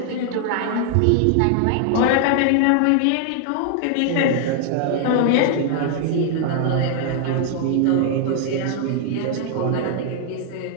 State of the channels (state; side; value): different; both; correlation 0.00